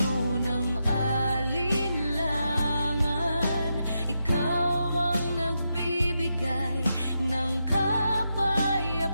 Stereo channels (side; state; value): both; inverted; correlation -0.85